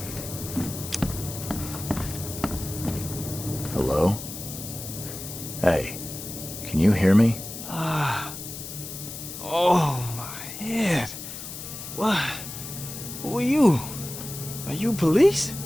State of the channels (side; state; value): left; noise; hiss, 9 dB below the sound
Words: Hello? Hey, can you hear me? Oh, my head. What? Who are you? Are you police?